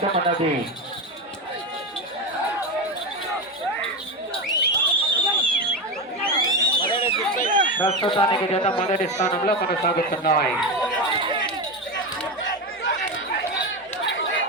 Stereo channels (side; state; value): both; normal; correlation 0.17